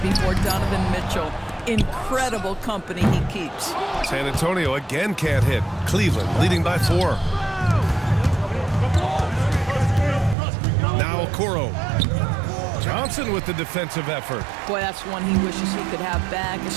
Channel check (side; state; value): left; drops out; at 10.4 s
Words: before Donovan Mitchell. Incredible company he keeps. San Antonio again can't hit. Cleveland leading by 4. Now Okoro. Johnson with the defensive effort. Boy, that's one he wishes he could have back,